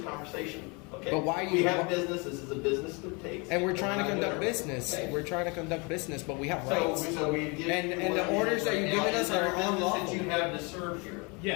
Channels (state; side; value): quieter; right; 30.0 dB